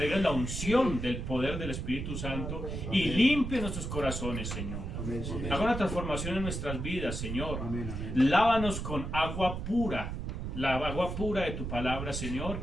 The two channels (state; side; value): noise; right; rumble, 5 dB below the sound